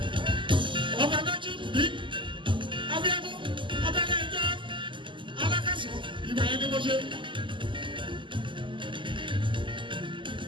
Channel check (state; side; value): late; left; 0.24 ms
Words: Ọba lójú bí, Abíọ́dún, ọba Nàìjíríà, alákàsọ̀. Ìgbà yẹn ni mo ṣe